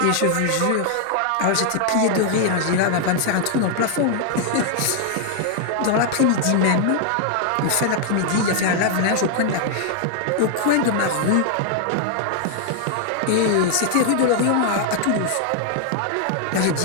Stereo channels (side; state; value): both; different; correlation 0.00